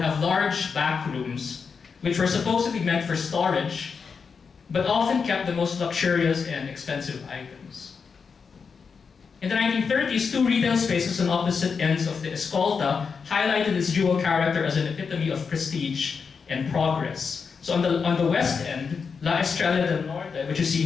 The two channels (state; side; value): quieter; right; 5.6 dB